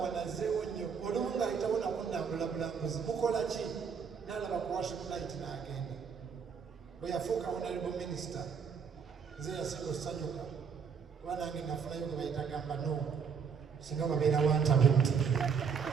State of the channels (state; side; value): quieter; left; 6.4 dB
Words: wanazeewo nnyo olumu ng'ayitawo nakunnambula bulambuzi mukola ki? N'alaba ku worship night n'agenda. Bwe yafuuka honorable minister nze yasinga okusanyuka kuba nange nafunayo gwe bayita gamba no singa babeera wantabuti.